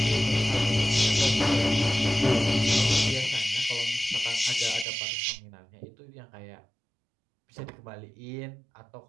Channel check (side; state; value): left; drops out; at 4.9 s